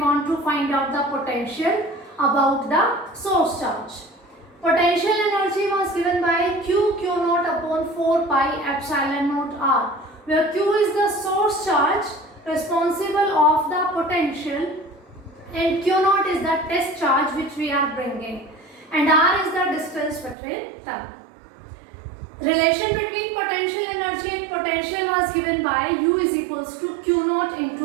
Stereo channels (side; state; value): left; drops out; at 20.4 s